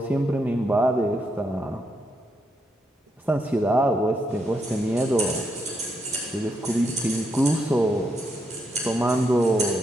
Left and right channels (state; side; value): normal; both; correlation 0.80